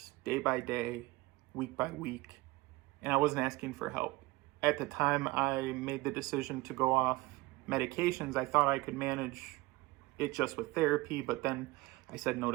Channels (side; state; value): left; quieter; 20.8 dB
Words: day by day, week by week, and I wasn't asking for help. At the time I made the decision to go off medications, I thought I could manage it just with therapy, but then I said no